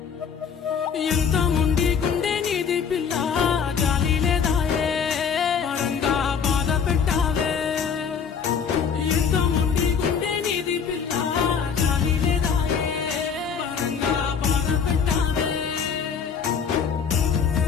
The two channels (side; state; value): right; quieter; 6.6 dB